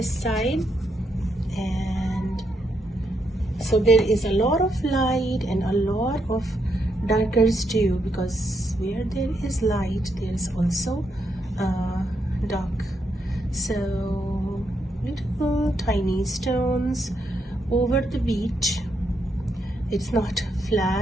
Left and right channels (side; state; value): both; normal; correlation 0.79